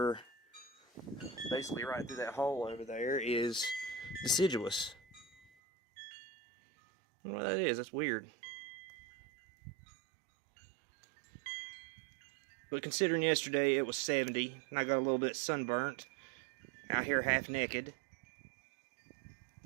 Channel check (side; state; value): left; drops out; at 5.5 s